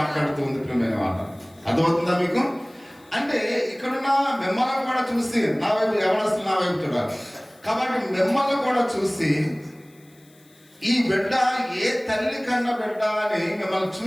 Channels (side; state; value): left; noise; hiss, 30 dB below the sound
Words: ప్రియమైన మాట. అర్థమవుతుందా మీకు? అంటే ఇక్కడున్న మిమ్మల్ని కూడా చూసి, నా వైపు యవనస్తులు నా వైపు చూడాలి కాబట్టి మిమ్మల్ని కూడా చూసి, ఈ బిడ్డ ఏ తల్లి కన్న బిడ్డ అని మిమ్మల్ని